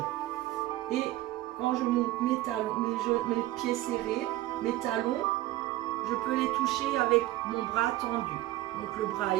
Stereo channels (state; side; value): quieter; left; 16.6 dB